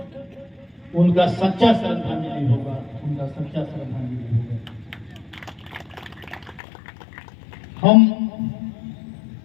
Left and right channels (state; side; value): drops out; right; at 6.6 s